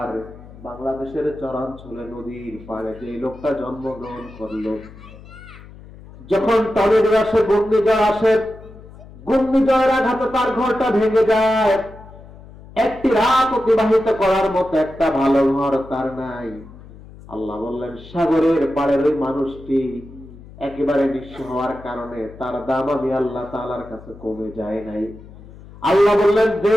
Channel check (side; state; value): left; noise; hum, 19 dB below the sound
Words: বাংলাদেশের চরাঞ্চলে নদীর পাড়ে যে লোকটা জন্মগ্রহণ করলো, যখন টর্নেডো আসে, ঘূর্ণিঝড় আসে, ঘূর্ণিঝড়ের আঘাতে তার ঘরটা ভেঙে যায়, একটি রাত অতিবাহিত করার মতো একটা ভালো ঘর তার নাই। আল্লাহ বললেন, সাগরের পাড়ের ওই মানুষটি একেবারে নিঃস্ব হওয়ার কারণে তার দাম আমি আল্লাহ তাআলার কাছে কমে যায় নাই। আল্লাহ বললেন,